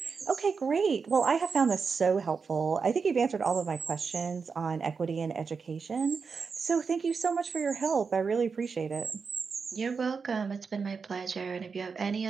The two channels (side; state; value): left; quieter; 5.3 dB